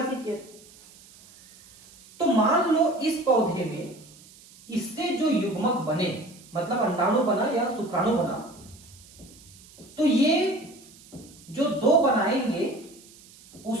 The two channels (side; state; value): right; noise; hiss, 23 dB below the sound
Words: किया। तो मान लो इस पौधे में इससे जो युग्मक बने, मतलब अंडाणु बना या शुक्राणु बना, तो ये जो 2 बनाएंगे